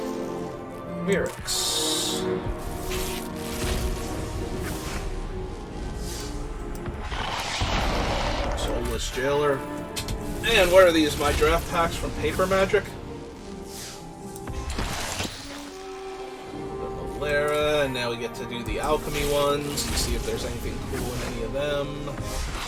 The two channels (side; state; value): both; identical; correlation 1.00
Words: Mirrex. Soulless Jailer. And what are these? My draft packs from Paper Magic? Lara, and now we get to do the alchemy ones and see if there's anything cool in any of them.